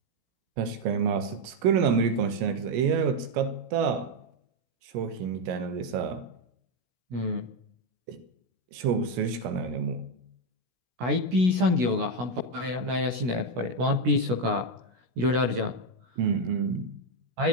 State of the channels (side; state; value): left; late; 16 ms